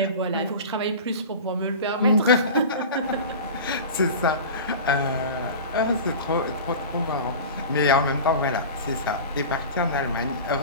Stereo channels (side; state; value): both; inverted; correlation -0.33